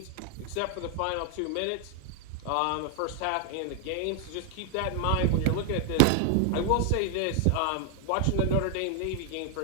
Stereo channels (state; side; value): different; both; correlation 0.00